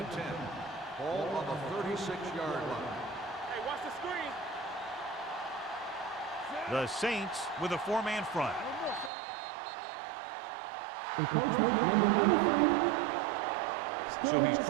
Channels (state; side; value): drops out; left; at 9.1 s